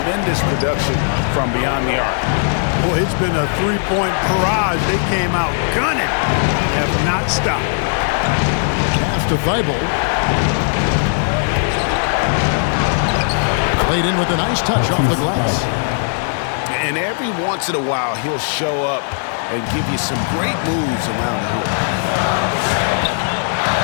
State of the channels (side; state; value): right; silent; digital silence